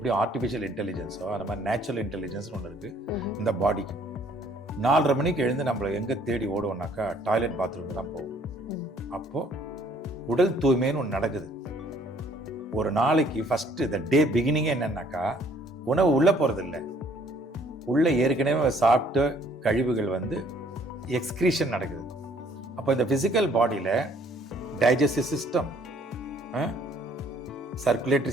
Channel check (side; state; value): both; normal; correlation 0.61